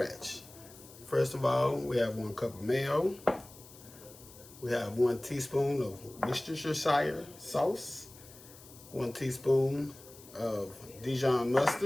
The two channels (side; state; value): left; noise; hiss, 20 dB below the sound